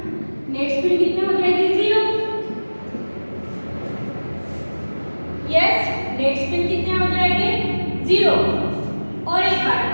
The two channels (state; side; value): inverted; both; correlation -1.00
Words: नेट स्पिन कितनी हो जाएगी, 0. यस, नेट स्पिन कितने हो जाएंगे, 0. और एक बात,